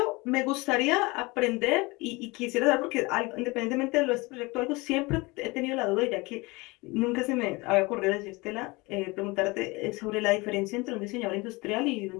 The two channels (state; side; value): quieter; right; 24.4 dB